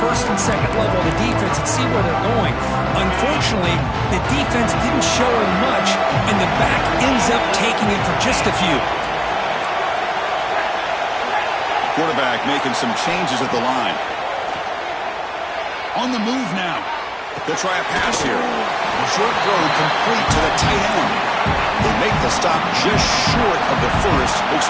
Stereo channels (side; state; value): both; identical; correlation 1.00